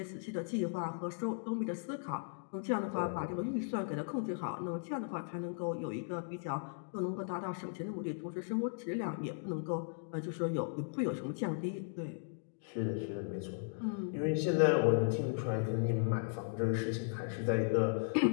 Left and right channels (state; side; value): silent; right; digital silence